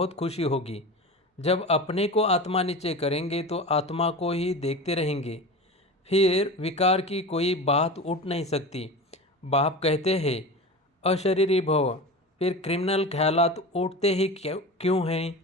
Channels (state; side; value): normal; both; correlation 0.30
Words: खुशी होगी। जब अपने को आत्मा नीचे करेंगे तो आत्मा को ही देखते रहेंगे। फिर विकार की कोई बात उठ नहीं सकती। बाप कहते हैं अशरीरी भव। फिर क्रिमिनल ख्यालात उठते ही क्यों हैं?